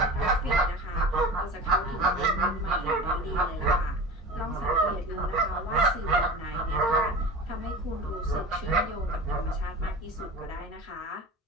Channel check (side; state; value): both; normal; correlation 0.33